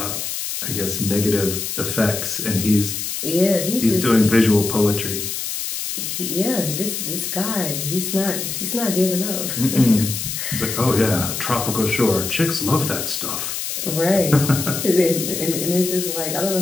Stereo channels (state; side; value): noise; left; hiss, 4 dB below the sound